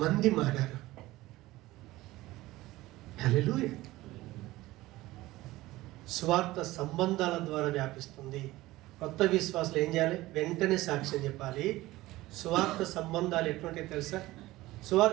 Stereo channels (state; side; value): quieter; left; 17.9 dB